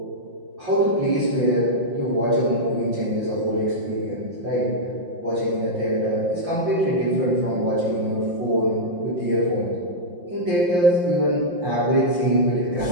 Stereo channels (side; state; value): left; late; 5.7 ms